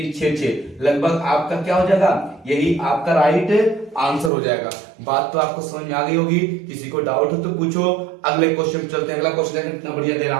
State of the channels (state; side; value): drops out; left; at 4.3 s